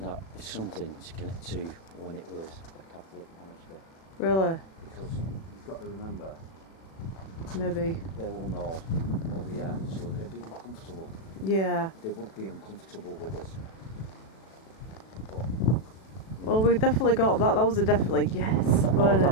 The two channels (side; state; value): right; late; 36 ms